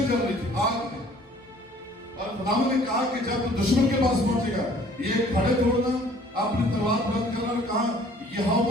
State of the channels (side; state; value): both; normal; correlation 0.55